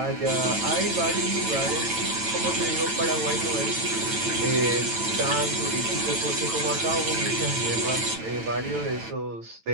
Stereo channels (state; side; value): late; left; 9.0 ms